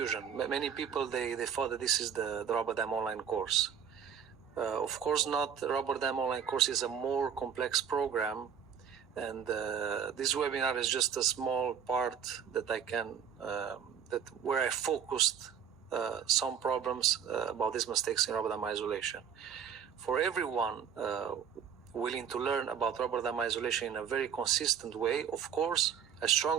Many people, they thought that this is the rubber dam online course. Of course not. The rubber dam online course is a more complex program, and this webinar is just a small part that I can, where I focused some problems about these mistakes in rubber dam isolation. For everyone willing to learn about rubber dam isolation in a very consistent way, of course, I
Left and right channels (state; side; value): quieter; left; 7.9 dB